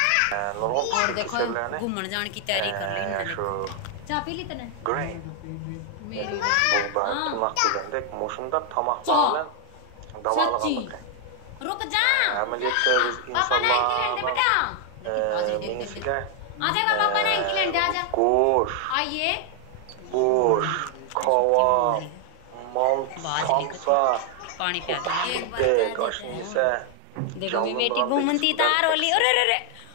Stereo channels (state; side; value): different; both; correlation 0.00